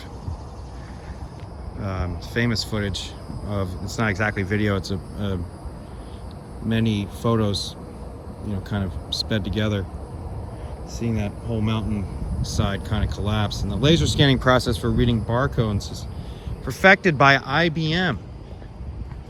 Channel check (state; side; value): identical; both; correlation 1.00